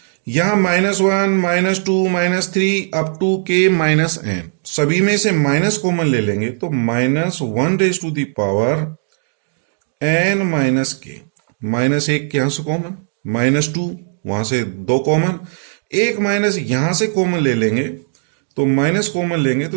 यहां -1 -2 -3 up to k minus n, सभी में से माइनस कॉमन ले लेंगे, तो -1 raise to the power n minus k। -1 यहां से कॉमन, -2 वहां से 2 कॉमन, एक माइनस यहां से कॉमन ले लेंगे, तो माइनस कॉमन लेंगे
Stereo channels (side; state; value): left; silent; digital silence